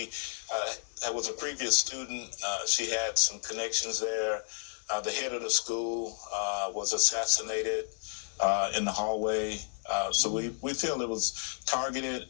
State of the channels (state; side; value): silent; right; 57 dB below the other